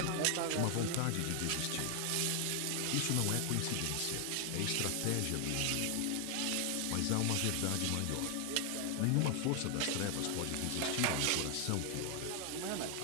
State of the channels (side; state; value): both; different; correlation 0.00